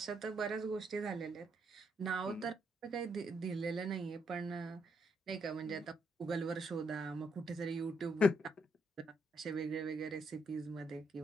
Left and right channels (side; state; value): both; normal; correlation 0.76